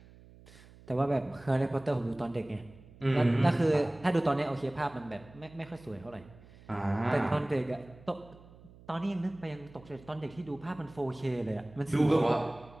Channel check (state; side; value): noise; right; hum, 22 dB below the sound